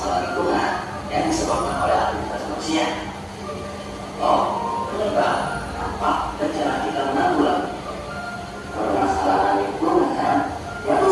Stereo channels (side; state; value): both; identical; correlation 1.00